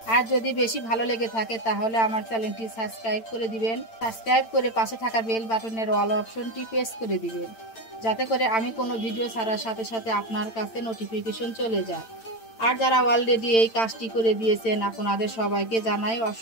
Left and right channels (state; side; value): late; right; 8.9 ms